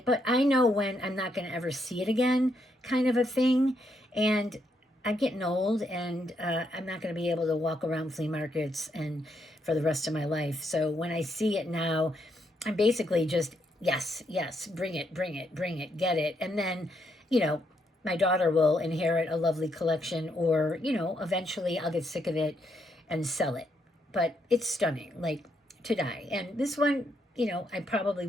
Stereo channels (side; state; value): both; normal; correlation 0.77